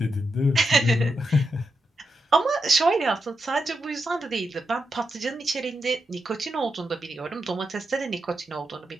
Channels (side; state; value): both; normal; correlation 0.86